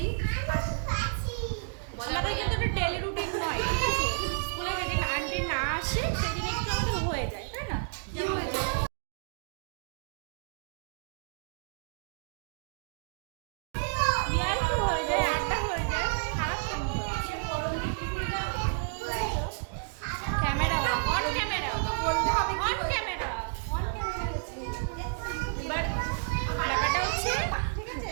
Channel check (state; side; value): silent; left; digital silence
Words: মজা আমাদের করি কিন্তু এটা ডেলি রুটিন নয়, ঠিক আছে। স্কুলে যেদিন আন্টি না আসে সেদিন একটু আমাদের হয়ে যায়, তাই না? কি হয়েছে? ইয়ার কি হয়ে যায়, আড্ডা হয়ে যায়, খারাপ কেন হয়? ক্যামেরা অন, ক্যামেরা তো বলতে হবে কি অন, হয়েছে? ক্যামেরা অন, ক্যামেরা আছে। এবার ব্যাপারটা হচ্ছে